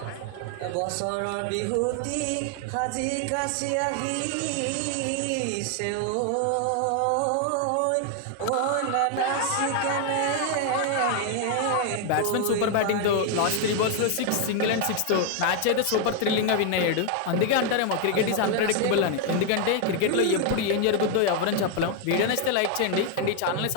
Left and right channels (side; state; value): both; different; correlation 0.00